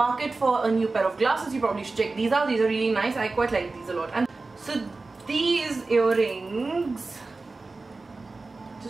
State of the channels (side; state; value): left; quieter; 3.6 dB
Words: for a new pair of glasses, you probably should check these out. These are really nice. I quite like these a lot. And so these earrings,